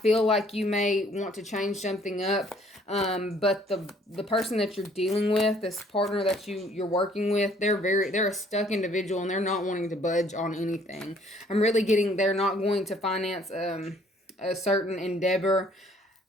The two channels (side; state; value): both; normal; correlation 0.60